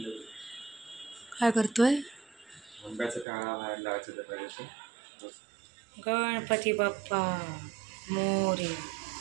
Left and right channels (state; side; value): drops out; left; at 3.2 s